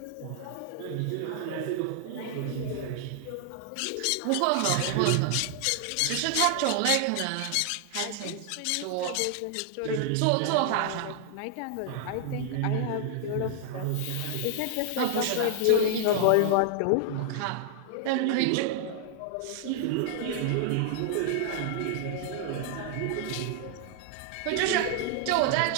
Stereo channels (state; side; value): different; both; correlation 0.00